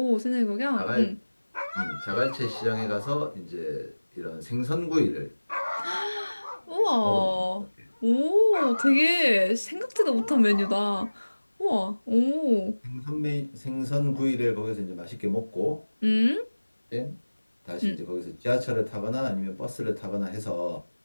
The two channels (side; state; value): both; inverted; correlation -1.00